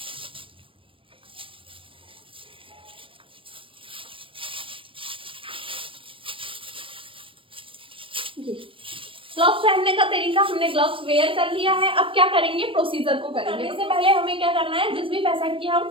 ग्लव्स पहनने का तरीका हमने ग्लव्स वेयर कर लिया है। अब क्या करेंगे, प्रोसीजर को करेंगे। इससे पहले हमें क्या करना है, जिस भी पेशेंट की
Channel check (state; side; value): late; left; 0.25 ms